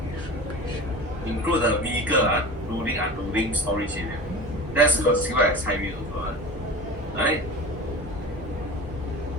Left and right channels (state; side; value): normal; both; correlation 0.34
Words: Include the vehicle, loading, unloading, storage area. That's considered as high risk also, right?